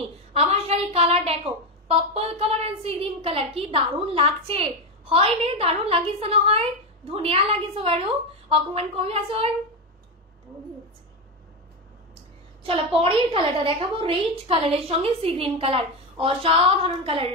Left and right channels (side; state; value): both; normal; correlation 0.12